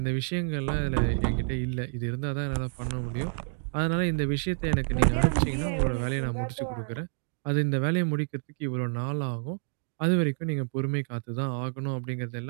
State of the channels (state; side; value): silent; left; digital silence